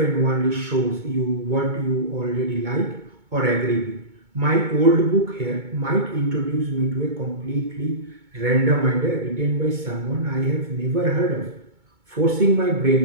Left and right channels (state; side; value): late; left; 2.2 ms